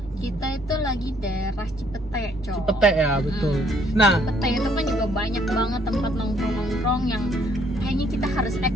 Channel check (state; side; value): normal; both; correlation 0.65